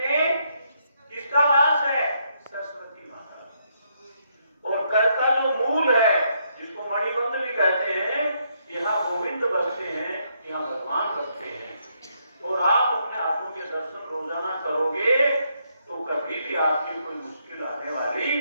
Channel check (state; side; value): inverted; both; correlation -0.75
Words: किसका वास है? सरस्वती माता। और कर का जो मूल है, जिसको मणिबंध भी कहते हैं, यहाँ गोविंद बसते हैं, यहाँ भगवान बसते हैं। और आप अपने हाथों के दर्शन रोजाना करोगे तो कभी भी आपकी कोई मुश्किल आने वाली